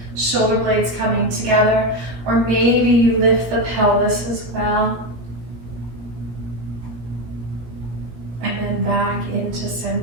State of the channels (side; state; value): left; late; 17 ms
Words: shoulder blades coming together, or maybe you lift the pelvis as well. And then back into